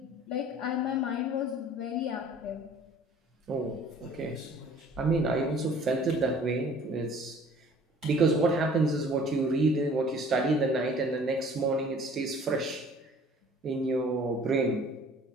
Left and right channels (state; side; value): normal; both; correlation 0.51